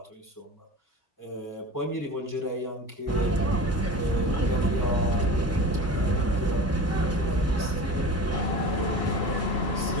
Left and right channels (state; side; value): normal; both; correlation 0.34